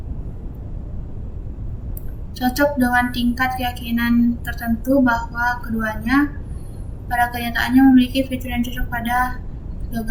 Cocok dengan tingkat keyakinan tertentu bahwa keduanya pada kenyataannya memiliki fitur yang cocok pada kedua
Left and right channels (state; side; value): identical; both; correlation 1.00